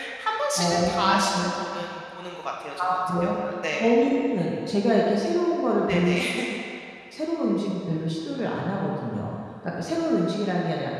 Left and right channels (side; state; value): both; identical; correlation 1.00